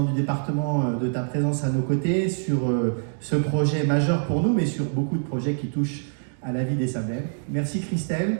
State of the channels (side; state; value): left; silent; digital silence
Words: du département, de ta présence à nos côtés sur ce projet majeur pour nous, mais sur beaucoup de projets qui touchent à la vie des Sablais. Merci